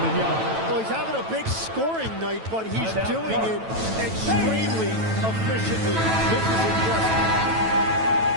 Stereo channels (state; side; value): late; left; 9.1 ms